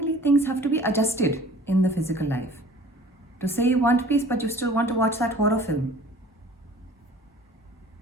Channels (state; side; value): normal; both; correlation 0.47